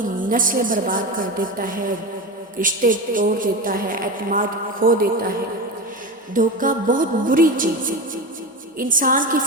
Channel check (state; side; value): normal; both; correlation 0.23